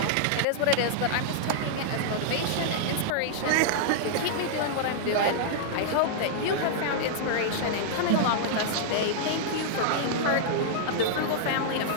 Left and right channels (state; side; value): different; both; correlation -0.01